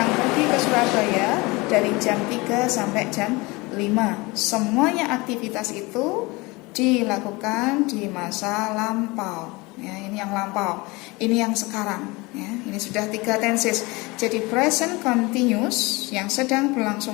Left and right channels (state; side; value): quieter; right; 24.1 dB